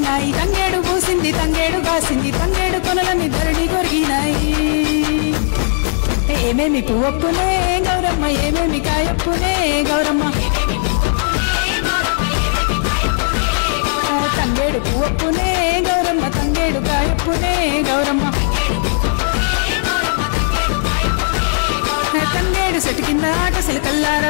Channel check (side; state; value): right; silent; 68 dB below the other